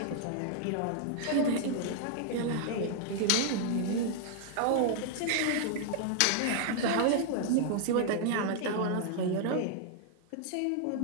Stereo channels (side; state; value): both; different; correlation -0.01